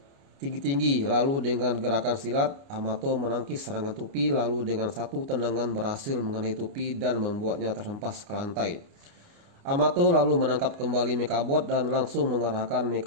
tinggi-tinggi, lalu dengan gerakan silat Amato menangkis serangan Tupi, lalu dengan satu tendangan berhasil mengenai Tupi dan membuatnya terhempas ke lantai. Amato lalu menangkap kembali Mekabot dan langsung mengarahkan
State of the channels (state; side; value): late; left; 29 ms